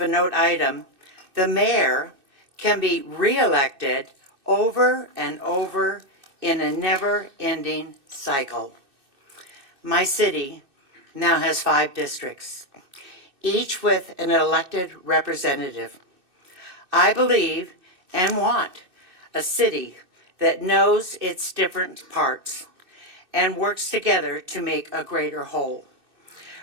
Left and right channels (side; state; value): left; late; 2.6 ms